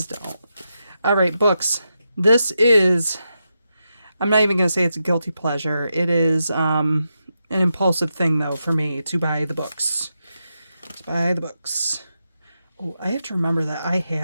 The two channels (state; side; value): inverted; both; correlation -0.87